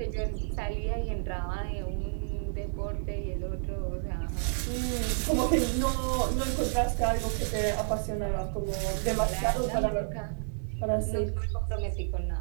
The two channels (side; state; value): left; silent; 58 dB below the other